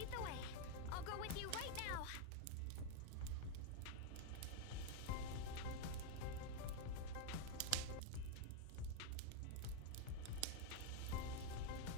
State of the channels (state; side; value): different; both; correlation 0.01